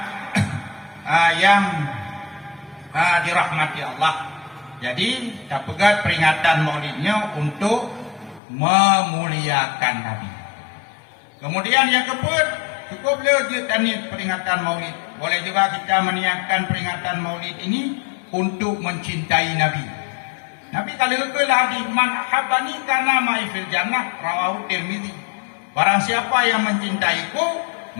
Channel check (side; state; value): right; drops out; at 8.4 s